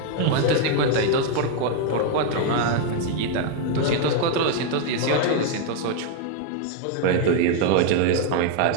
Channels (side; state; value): both; different; correlation 0.01